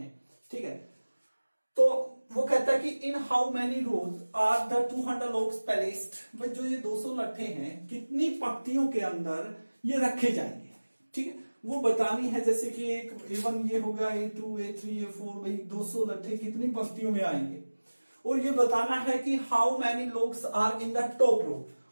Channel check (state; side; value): inverted; both; correlation -1.00